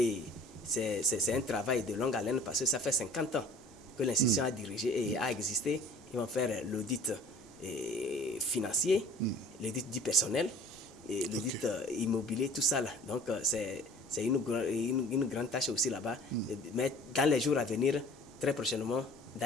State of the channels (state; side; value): normal; both; correlation 0.47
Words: c'est un travail de longue haleine parce que ça fait 50 ans que l'institution a dirigé et a existé. Ils vont faire l'audit financier, l'audit du personnel, l'audit immobilier, tout ça là. Donc, c'est une grande tâche aussi là-bas. Mais dans les jours à venir, très prochainement,